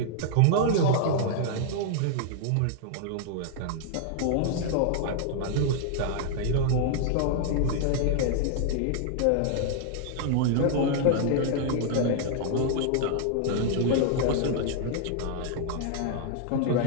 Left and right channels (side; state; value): both; different; correlation -0.01